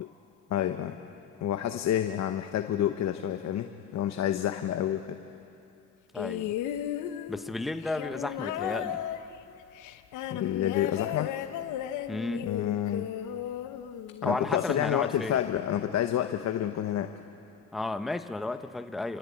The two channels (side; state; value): right; quieter; 8.5 dB